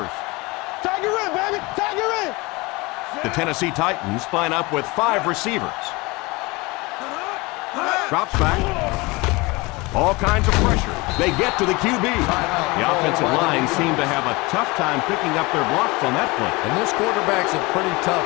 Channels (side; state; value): right; quieter; 24.2 dB